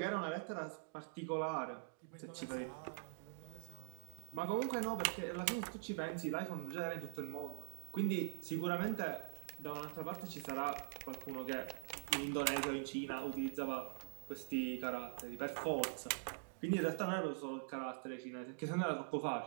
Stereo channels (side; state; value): left; silent; digital silence